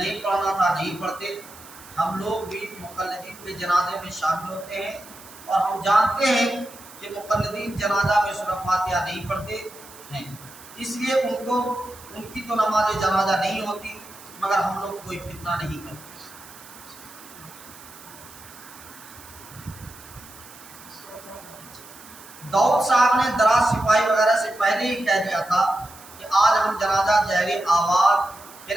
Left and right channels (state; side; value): noise; right; hiss, 19 dB below the sound